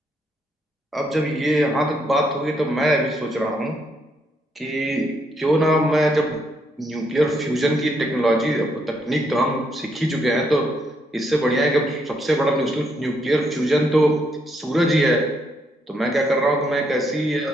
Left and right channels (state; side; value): normal; both; correlation 0.75